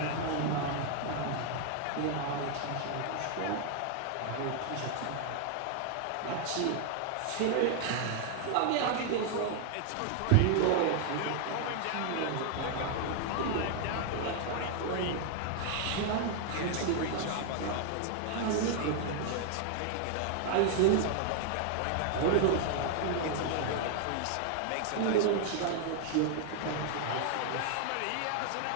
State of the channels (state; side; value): different; both; correlation 0.00